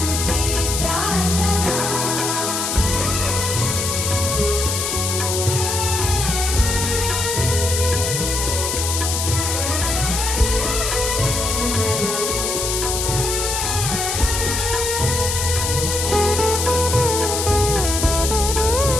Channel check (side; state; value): left; noise; hiss, 1 dB below the sound